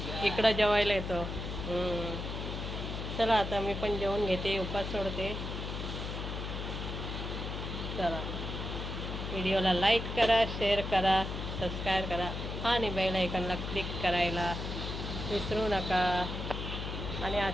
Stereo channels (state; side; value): noise; left; hum, 5 dB below the sound